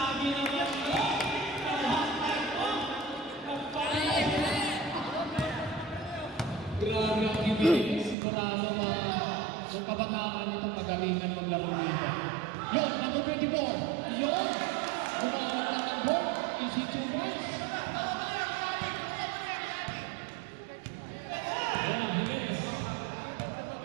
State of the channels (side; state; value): left; drops out; at 8.2 s